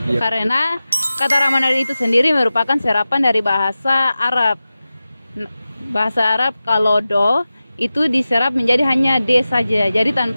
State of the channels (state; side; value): inverted; both; correlation -0.95